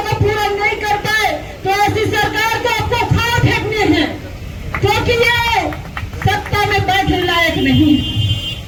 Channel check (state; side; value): identical; both; correlation 1.00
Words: को पूरा नहीं कर पाए तो ऐसी सरकार को आपको खाना फेंकने हैं, क्योंकि ये सत्ता में बैठने लायक नहीं।